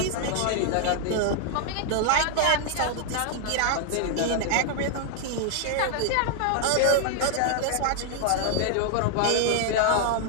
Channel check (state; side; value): different; both; correlation 0.00